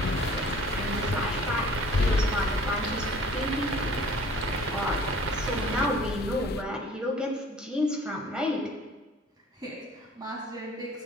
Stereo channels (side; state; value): both; normal; correlation 0.50